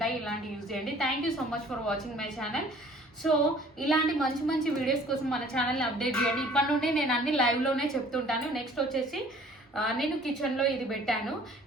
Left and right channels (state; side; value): normal; both; correlation 0.53